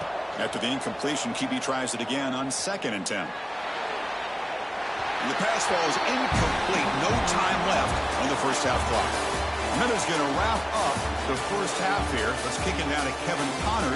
After the incompletion, QB tries it again on 2nd and 10. And the pass falls incomplete. No time left on the first half clock. And that is going to wrap up the first half here. Let's kick it down to Kevin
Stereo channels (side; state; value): both; identical; correlation 1.00